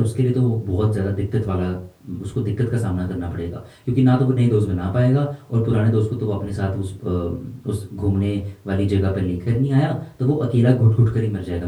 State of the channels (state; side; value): identical; both; correlation 1.00